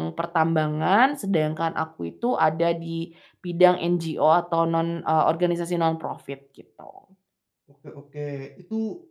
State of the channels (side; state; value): both; identical; correlation 1.00